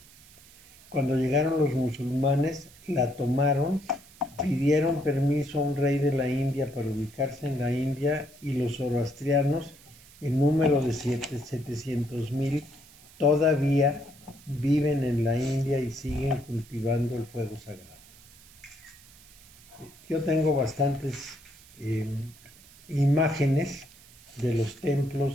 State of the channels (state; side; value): noise; right; hiss, 24 dB below the sound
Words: Cuando llegaron los musulmanes, la tomaron, pidieron permiso a un rey de la India para ubicarse en la India, y los zoroastrianos, en número de 700,000, todavía viven en la India y siguen cultivando el fuego sagrado. Yo tengo bastantes imágenes de los